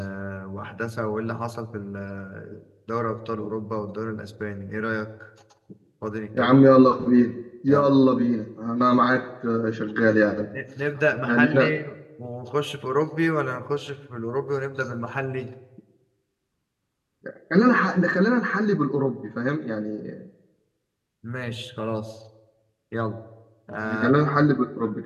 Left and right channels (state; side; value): identical; both; correlation 1.00